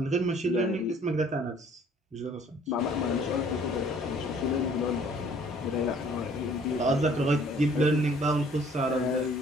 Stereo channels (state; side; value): normal; both; correlation 0.57